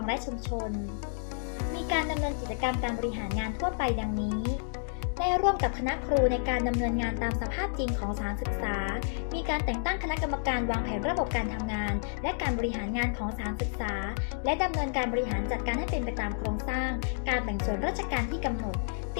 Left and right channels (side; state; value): right; silent; digital silence